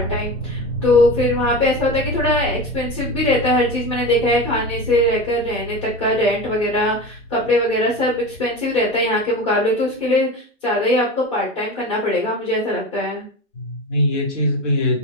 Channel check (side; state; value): both; normal; correlation 0.27